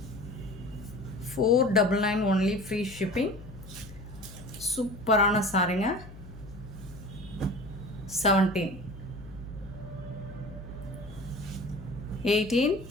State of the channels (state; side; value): noise; left; hum, 16 dB below the sound